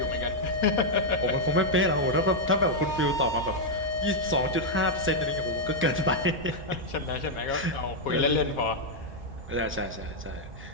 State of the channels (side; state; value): both; normal; correlation -0.02